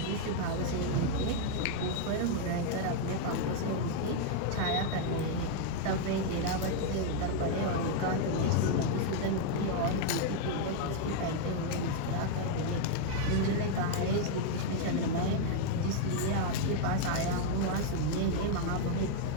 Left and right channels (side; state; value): both; different; correlation 0.00